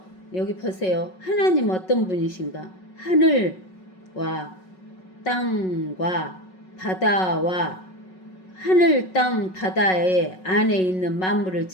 여기 보세요. 하나님 어떤 분이신가? 하늘과 땅과 바다와 하늘, 땅, 바다의 안에 있는 만물을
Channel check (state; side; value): late; right; 5.4 ms